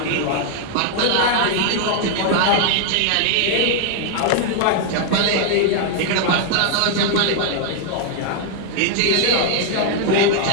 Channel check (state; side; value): different; both; correlation 0.00